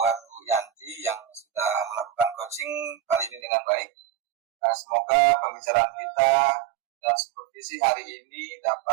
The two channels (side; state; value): left; drops out; at 3.4 s